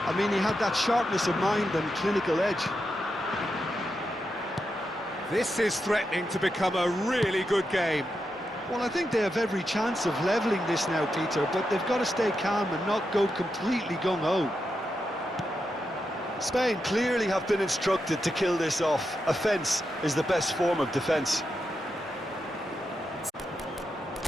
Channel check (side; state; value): both; normal; correlation 0.86